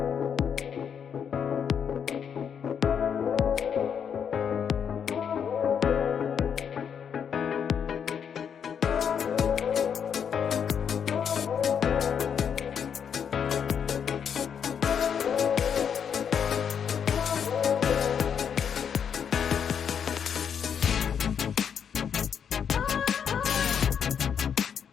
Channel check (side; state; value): right; quieter; 7.6 dB